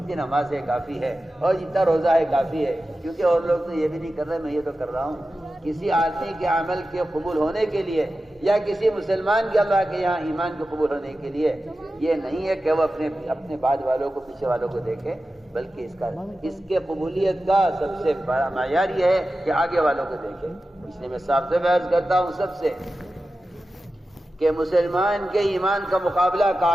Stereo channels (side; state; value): both; normal; correlation 0.93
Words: نماز ہے کافی ہے، اور جتنا روزہ ہے کافی ہے، کیونکہ اور لوگ تو یہ بھی نہیں کر رہے، میں یہ تو کر رہا ہوں۔ کسی آدمی کے عمل کے قبول ہونے کے لیے یا کسی مسلمان کے اللہ کے یہاں ایمان کے قبول ہونے کے لیے یہ نہیں ہے کہ وہ اپنے بعد والوں کو، پیچھے والوں کو دیکھے، بلکہ اس کے قبولیت کا سب سے بڑا معیار یہ ہے کہ آگے والوں کو دیکھے۔ اس لیے میں صاف سے عرض کرتا ہوں سب سے کہ مسلمان کے ایمان کا مقابلہ